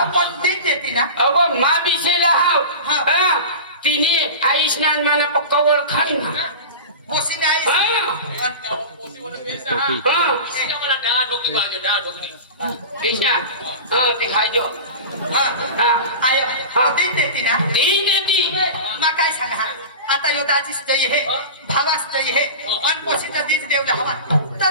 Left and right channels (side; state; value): both; inverted; correlation -0.31